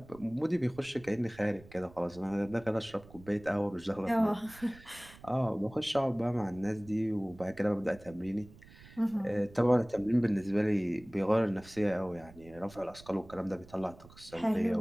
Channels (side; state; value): right; noise; rumble, 21 dB below the sound